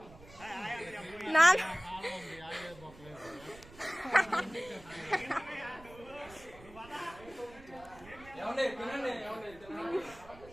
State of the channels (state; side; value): noise; right; rumble, 20 dB below the sound